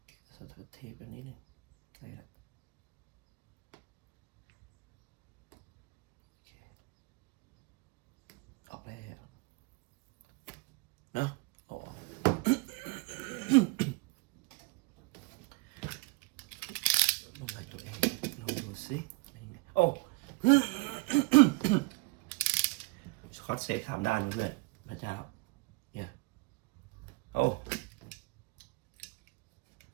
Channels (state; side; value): quieter; left; 27.3 dB